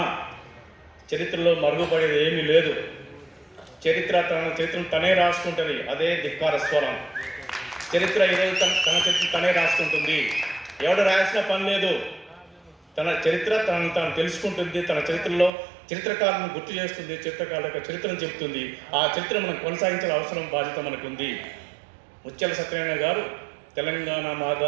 చరిత్రలో మరుగుపడేది ఏమీ లేదు. చరిత్రను తనే రాసుకుంటుంది. అదే ధిక్కార స్వరం. చరిత్ర ఈరోజు తన చరిత్ర తనే రాసుకుంటుంది. ఎవడు రాయాల్సిన పని లేదు. తన చరిత్ర తాను తెలుసుకుంటుంది. తన చరిత్రలో చరిత్రకారులను గుర్తు చేస్తుంది, చరిత్రకారుల యొక్క చరిత్రను చెబుతుంది. ఆ చరిత్ర మనం కొనసాగించాల్సిన అవసరం, బాధ్యత మనకు ఉంది. ముత్యాల సత్యనారాయణ గారు తెలంగాణ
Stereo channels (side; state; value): left; drops out; at 15.5 s